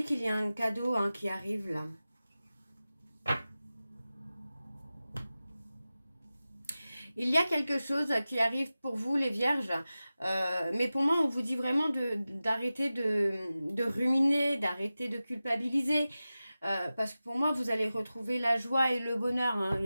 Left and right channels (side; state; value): both; inverted; correlation -0.95